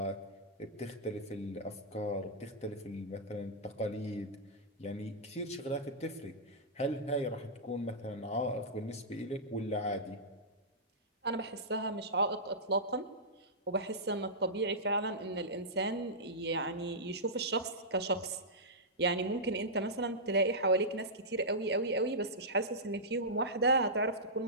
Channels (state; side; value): normal; both; correlation -0.14